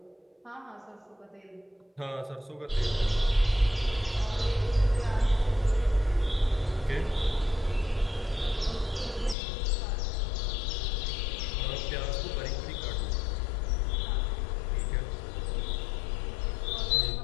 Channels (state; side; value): drops out; right; at 9.3 s